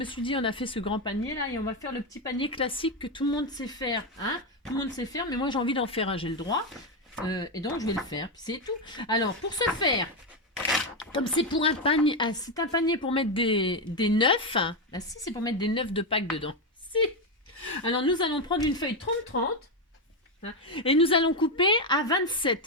suis dit, on a fait ce grand panier là et on va faire le petit panier classique que tout le monde sait faire. Hein? Tout le monde sait faire, mais moi, j'ai envie d'en faire un. J'ai le droit. Et donc, je vais le faire. Puis c'est tout. Alors, pour ce faire... Comme c'est pour un panier, c'est un panier pour mettre des neufs. Bah si, c'est pour mettre des neufs de Pâques dedans. Si. Alors nous allons prendre une feuille 30-30 hein, et nous allons couper à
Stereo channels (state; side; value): normal; both; correlation 0.07